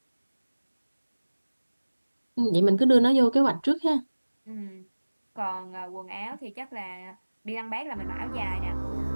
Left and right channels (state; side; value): inverted; both; correlation -1.00